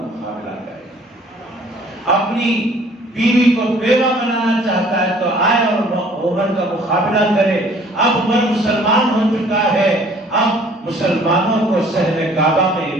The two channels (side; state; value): both; normal; correlation 0.55